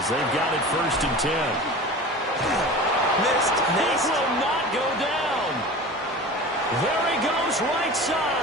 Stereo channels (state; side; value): normal; both; correlation 0.35